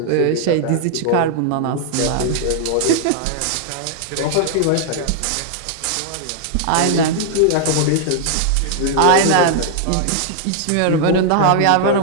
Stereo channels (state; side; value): different; both; correlation -0.01